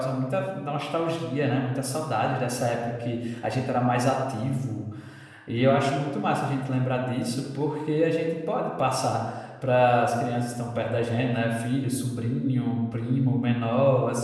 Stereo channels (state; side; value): identical; both; correlation 1.00